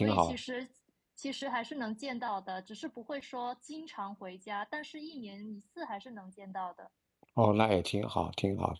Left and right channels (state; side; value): identical; both; correlation 1.00